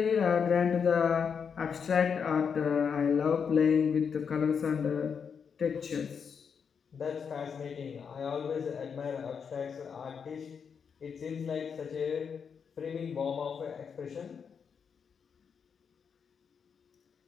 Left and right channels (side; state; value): right; quieter; 6.6 dB